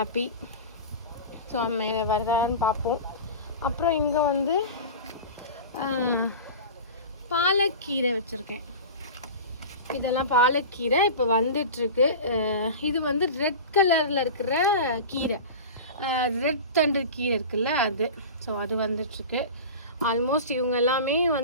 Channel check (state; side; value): inverted; both; correlation -0.31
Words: ஸோ மேலே வருதான்னு பார்ப்போம். அப்புறம் இங்கே வந்து பாலக்கீரை வச்சுருக்கேன். இதெல்லாம் பாலக்கீரை இப்போ வந்துட்டுருக்கு. இது வந்து ரெட் கலரில் இருக்கிற கீரை, ரெட் தண்டு கீரை இருக்குல்ல அது. ஸோ அது வந்துட்டுருக்கு. ஆல்மோஸ்ட் இவங்க எல்லாமே